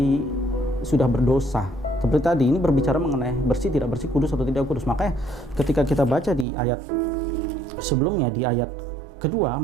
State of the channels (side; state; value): left; drops out; at 6.5 s